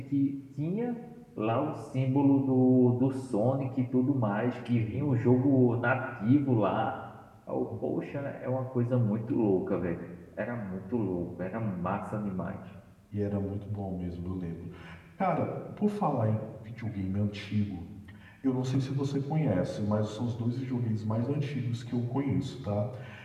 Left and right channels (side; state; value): both; identical; correlation 1.00